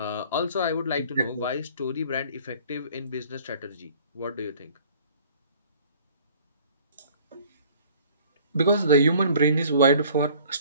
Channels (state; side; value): inverted; both; correlation -0.53